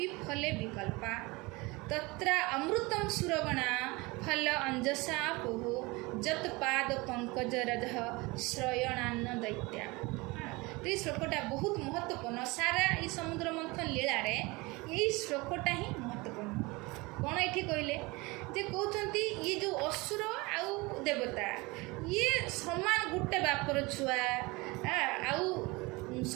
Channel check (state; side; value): quieter; left; 24.2 dB